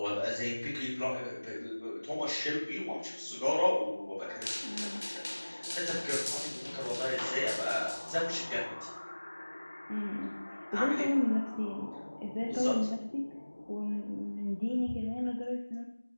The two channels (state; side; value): inverted; both; correlation -1.00